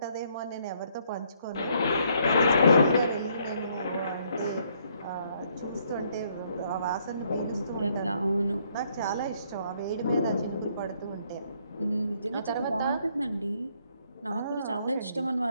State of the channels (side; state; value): both; inverted; correlation -0.69